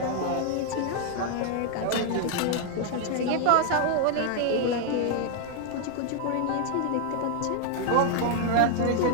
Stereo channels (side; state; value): both; different; correlation 0.00